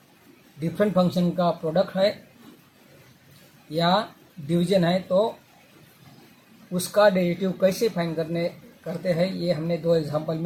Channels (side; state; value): both; identical; correlation 1.00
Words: डिफरेंट फंक्शन का प्रोडक्ट है या डिवीजन है, तो उसका डेरिवेटिव कैसे फाइंड करते हैं, ये हमने 2 एग्जांपल